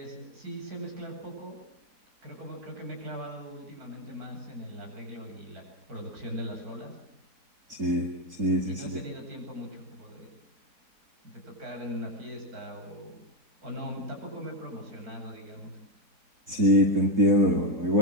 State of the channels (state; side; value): late; left; 4.1 ms